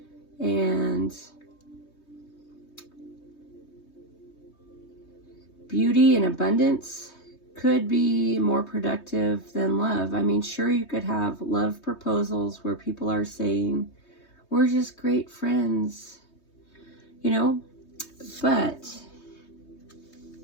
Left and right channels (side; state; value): right; late; 3.2 ms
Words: and beauty and abundance could be more productive than love. I mean, sure, you could have love proposals where people are saying, we're just great friends, you know, but